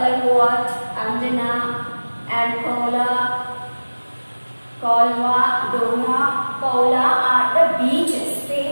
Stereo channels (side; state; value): both; inverted; correlation -1.00